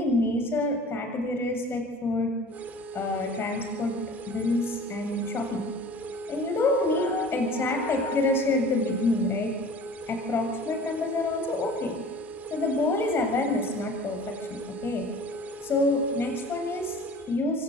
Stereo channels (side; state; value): both; normal; correlation 0.44